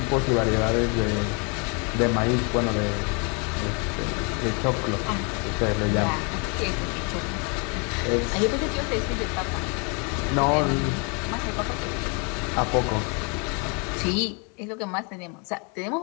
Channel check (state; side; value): quieter; right; 34.2 dB